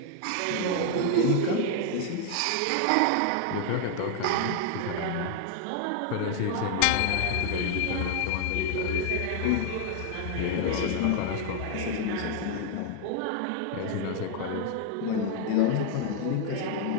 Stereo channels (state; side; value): different; both; correlation 0.00